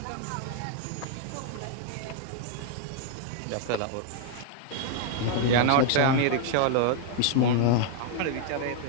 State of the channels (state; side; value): different; both; correlation 0.00